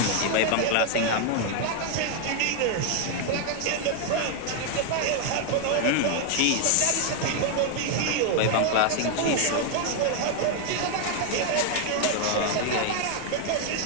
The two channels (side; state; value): both; different; correlation 0.00